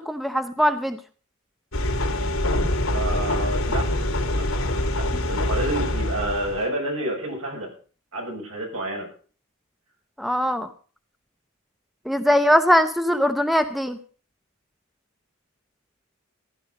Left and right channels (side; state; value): both; normal; correlation 0.64